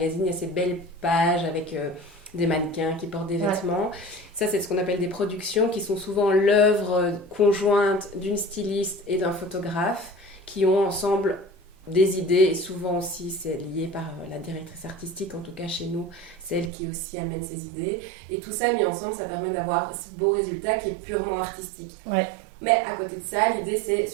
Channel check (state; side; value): drops out; left; at 16.7 s